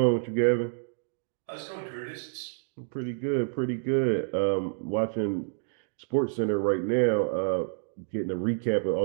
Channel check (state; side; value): silent; left; digital silence